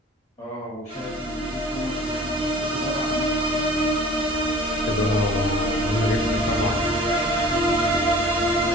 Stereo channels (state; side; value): normal; both; correlation 0.46